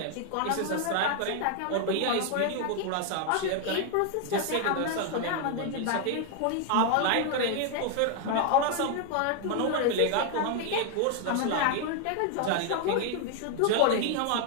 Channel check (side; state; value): both; different; correlation 0.00